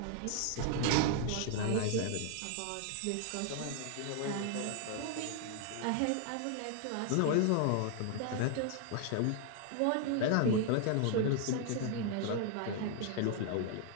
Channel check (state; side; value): different; both; correlation 0.00